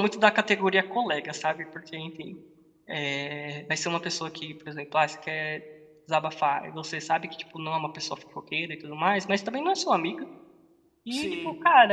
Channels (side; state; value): both; identical; correlation 1.00